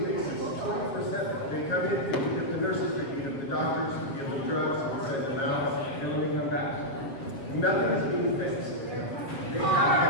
basis, 24/7. They come in, they beat up the nurses, they beat up the doctors, we give them drugs, we send them out, and then they come back. Nothing is being fixed. They have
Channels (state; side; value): late; right; 7.3 ms